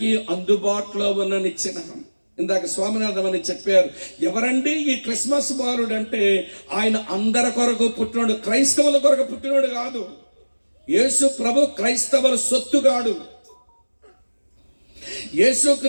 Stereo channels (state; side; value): inverted; both; correlation -1.00